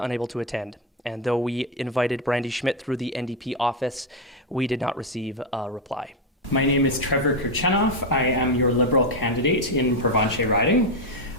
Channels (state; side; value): normal; both; correlation 0.06